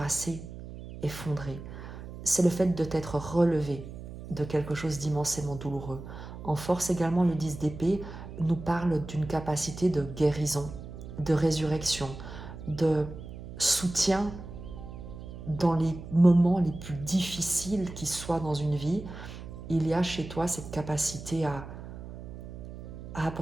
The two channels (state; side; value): noise; right; hum, 12 dB below the sound